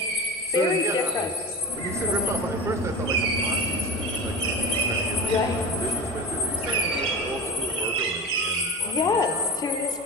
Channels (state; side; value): normal; both; correlation 0.29